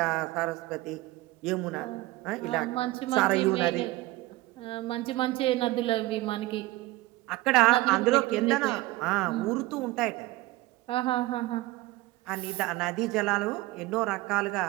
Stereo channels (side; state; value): left; quieter; 19.0 dB